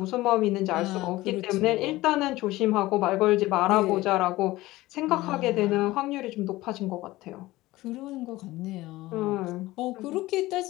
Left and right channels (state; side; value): quieter; right; 18.2 dB